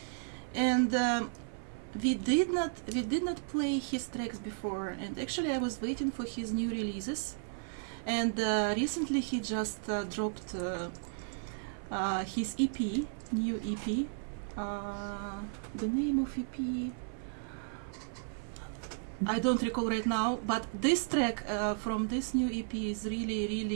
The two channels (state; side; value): silent; left; 55 dB below the other